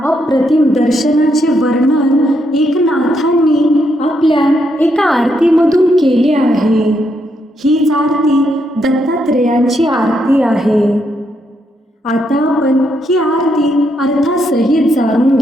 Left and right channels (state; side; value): normal; both; correlation 0.78